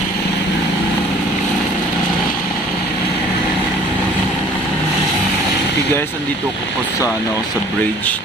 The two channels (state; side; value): normal; both; correlation 0.52